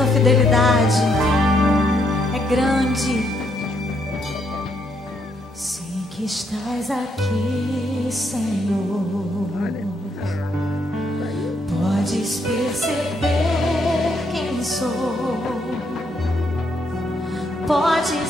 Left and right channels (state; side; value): normal; both; correlation 0.74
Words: fidelidade é grande. Sei que estás aqui, Senhor. Podes perceber quem sou.